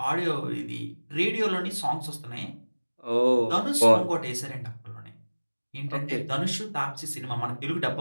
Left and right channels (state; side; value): inverted; both; correlation -1.00